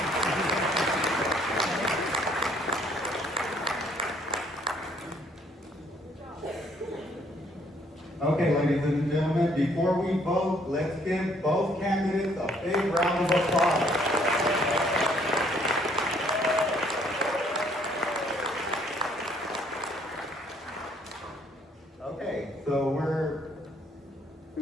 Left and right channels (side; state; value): both; normal; correlation 0.64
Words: Okay, ladies and gentlemen, before we vote, let's give both candidates a big round of applause. Okay, so we're